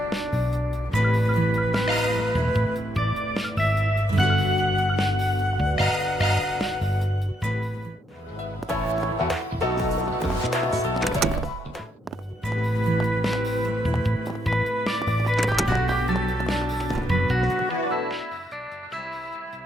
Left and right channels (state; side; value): normal; both; correlation 0.78